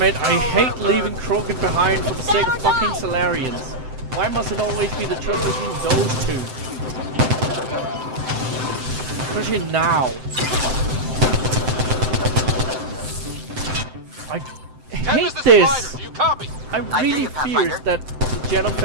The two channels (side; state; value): left; late; 7.8 ms